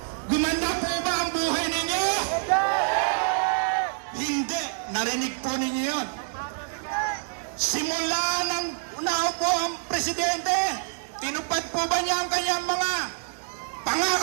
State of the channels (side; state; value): left; silent; 61 dB below the other